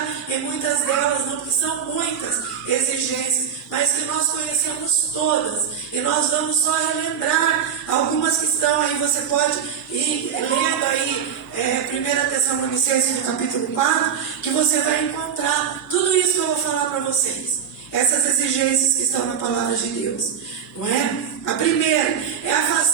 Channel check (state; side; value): quieter; left; 7.7 dB